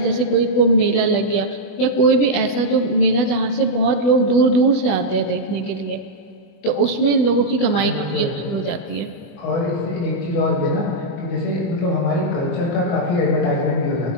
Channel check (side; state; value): right; late; 24 ms